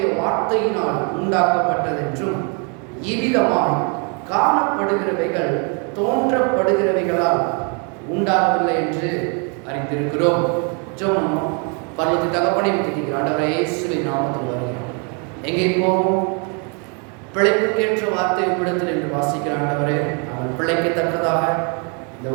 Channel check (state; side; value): quieter; left; 36.7 dB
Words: வார்த்தையினால் உண்டாக்கப்பட்டதென்றும் இவ்விதமாய் காணப்படுகிறவைகள் தோன்றப்படுகிறவைகளால் உண்டாகவில்லை என்று அறிந்திருக்கிறோம். ஜெபம். பரலோக தகப்பனே, ஆண்டவரே இயேசுவின் நாமத்தில் வருகிறோம். எங்கே போவோம்? பிழைப்புக்கேற்ற வார்த்தை உம்மிடத்தில் என்று வாசிக்கிற ஆண்டவரே, நாங்கள் பிழைக்கத்தக்கதாக இந்த